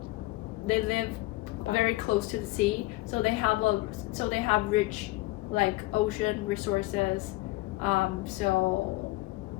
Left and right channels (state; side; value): quieter; right; 19.7 dB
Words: very close to the sea, so they have rich like ocean resources, so